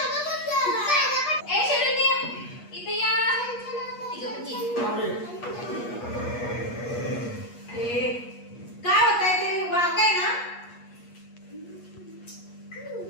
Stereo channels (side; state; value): right; late; 8.4 ms